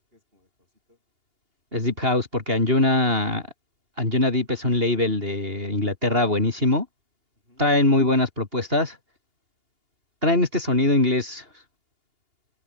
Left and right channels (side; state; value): left; late; 2.8 ms